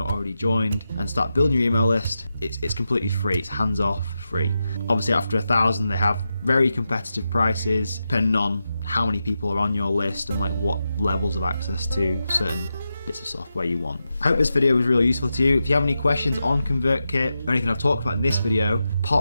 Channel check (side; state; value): both; inverted; correlation -0.89